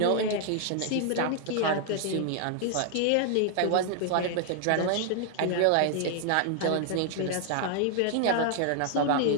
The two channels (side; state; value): both; different; correlation 0.00